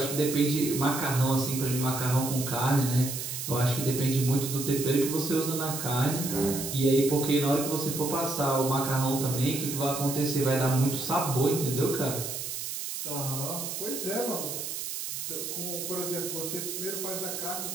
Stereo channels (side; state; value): right; noise; hiss, 5 dB below the sound